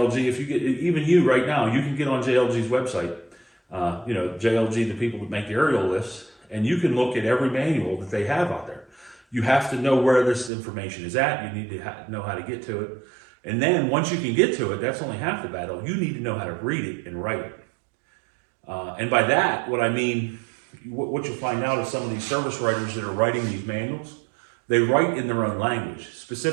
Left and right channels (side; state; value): left; drops out; at 10.5 s